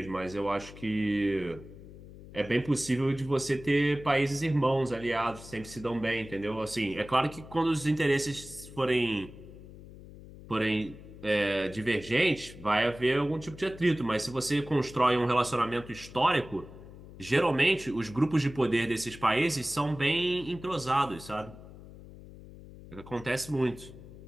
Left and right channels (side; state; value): left; noise; hum, 17 dB below the sound